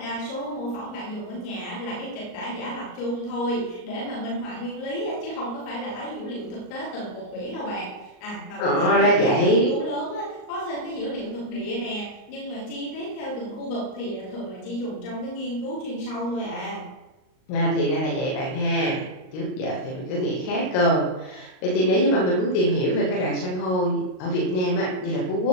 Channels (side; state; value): right; late; 38 ms